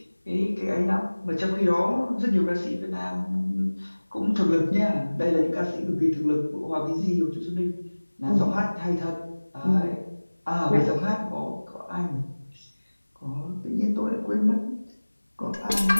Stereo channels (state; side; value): inverted; both; correlation -1.00